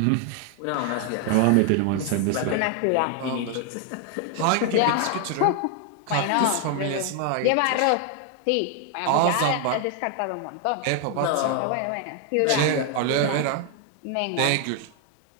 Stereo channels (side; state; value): both; different; correlation 0.00